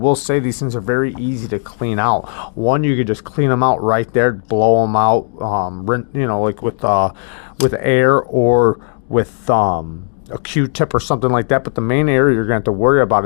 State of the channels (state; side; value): silent; right; 60 dB below the other